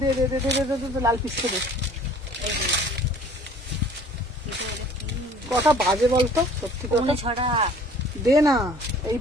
দে দে দে দে দে দে, লাল পিসটা দে। কটা বাজে বলতো? সত্যি কথা ছড়া দে না, এই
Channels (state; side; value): normal; both; correlation 0.51